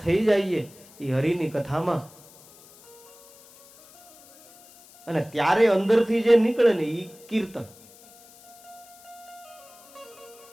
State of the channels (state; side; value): noise; left; hiss, 24 dB below the sound